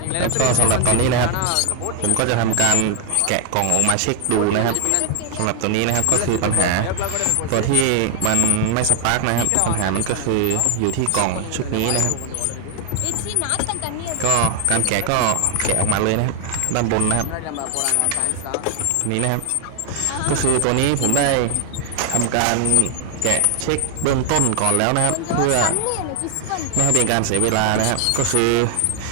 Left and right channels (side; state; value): both; different; correlation 0.00